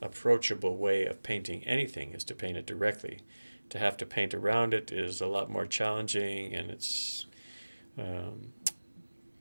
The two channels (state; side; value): inverted; both; correlation -1.00